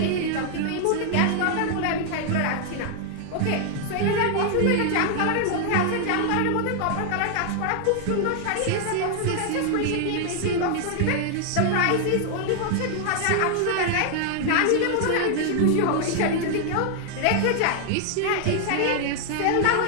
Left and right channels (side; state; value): both; different; correlation 0.00